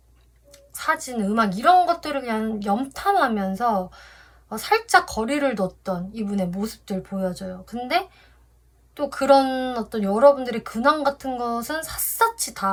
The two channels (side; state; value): both; identical; correlation 1.00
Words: 사진, 음악 이런 것들을 그냥 염탐하면서 살짝 거리를 뒀던 이분의 모습들 보여져요. 근데 또 그런 어떤 여러분들의 근황 같은 것은 샅샅이